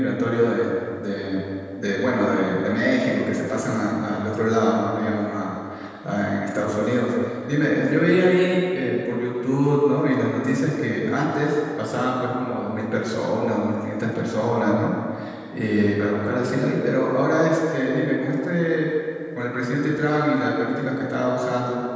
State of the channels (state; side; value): identical; both; correlation 1.00